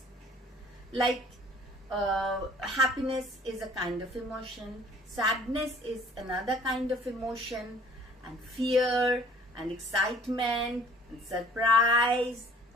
Like happiness is a kind of emotion, sadness is another kind of emotion, and fear and excitement and surprise,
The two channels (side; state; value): both; normal; correlation 0.53